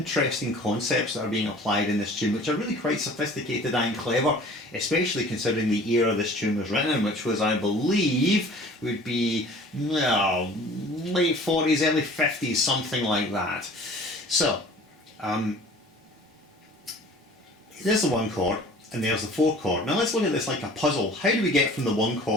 concepts that are being applied in this tune which are really quite sophisticated and clever, especially considering the era this tune was written in, which was, I believe, would be late 40s, early 50s, something like that. So, there's the 1 chord and there's the 4 chord. Now let's look at this like a puzzle. How do we get from the 1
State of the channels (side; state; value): both; normal; correlation 0.47